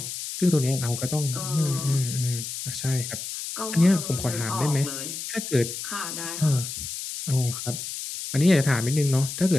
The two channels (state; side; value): noise; left; hiss, 7 dB below the sound